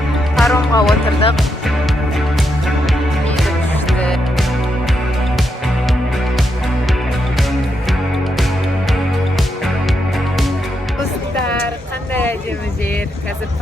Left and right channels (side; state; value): both; normal; correlation 0.82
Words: Паромға отырдық. Мейірім күшті. Достар, қандай әдемі жер. Қазір